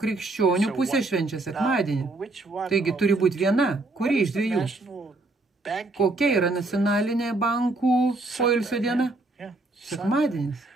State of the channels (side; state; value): left; quieter; 3.1 dB